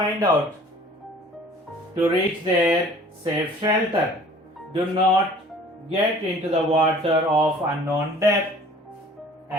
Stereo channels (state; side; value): normal; both; correlation 0.50